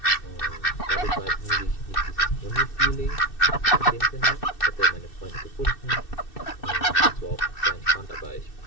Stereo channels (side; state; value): right; late; 2.6 ms